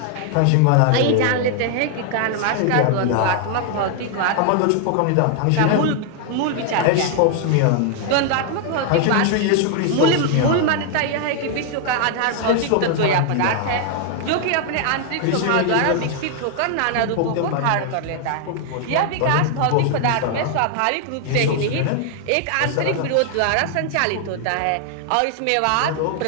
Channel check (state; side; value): different; both; correlation 0.00